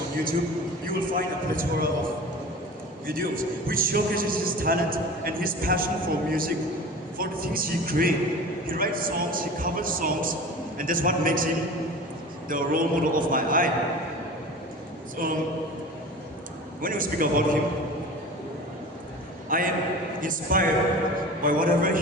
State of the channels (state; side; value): normal; both; correlation 0.37